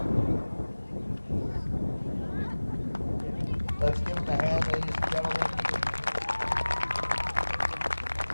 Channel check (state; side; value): inverted; both; correlation -1.00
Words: Let's give him a hand, ladies and gentlemen.